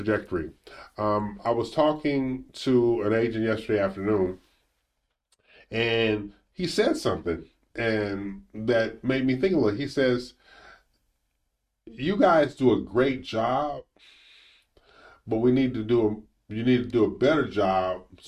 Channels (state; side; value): identical; both; correlation 1.00